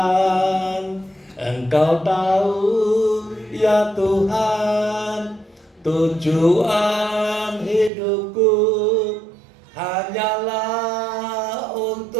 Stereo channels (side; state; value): left; drops out; at 7.9 s